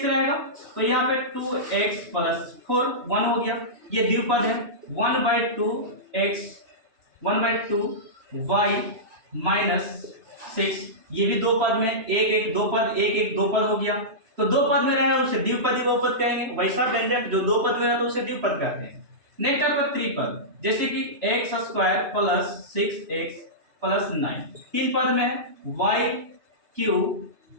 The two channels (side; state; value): left; late; 3.0 ms